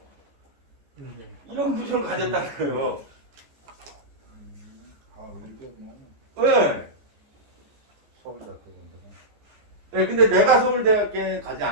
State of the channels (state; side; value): late; left; 14 ms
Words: 이런 구조를 가졌다는 거예요. 네. 네, 근데 내가 서울대학교에 가지